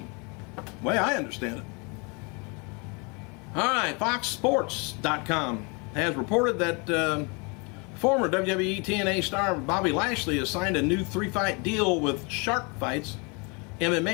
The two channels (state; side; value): quieter; right; 31.7 dB